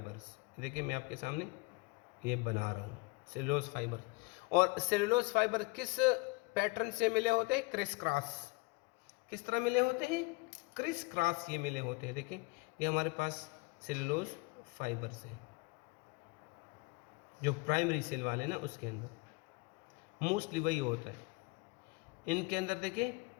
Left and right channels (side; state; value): right; quieter; 26.5 dB